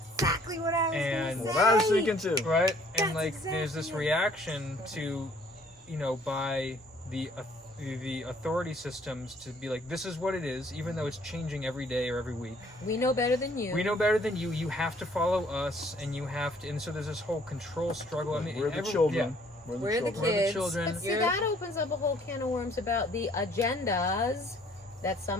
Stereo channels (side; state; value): both; normal; correlation 0.60